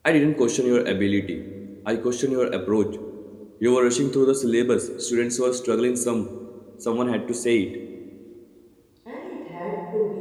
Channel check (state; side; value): identical; both; correlation 1.00